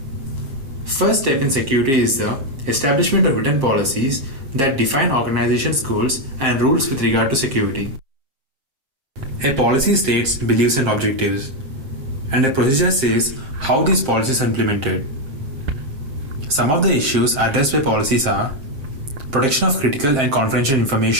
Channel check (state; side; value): late; left; 7.5 ms